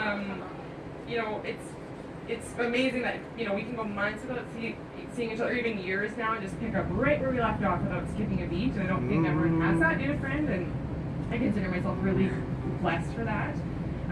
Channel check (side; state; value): both; identical; correlation 1.00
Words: It's amazing that we can go months without seeing each other, even years now, and just pick up right where we left off without skipping a beat. And I don't think everyone has that in a friend, and I consider myself really blessed for that.